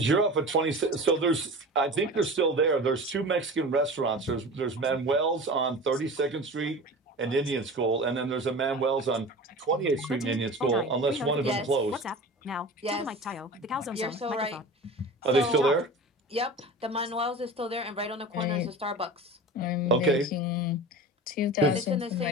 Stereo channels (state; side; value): normal; both; correlation 0.35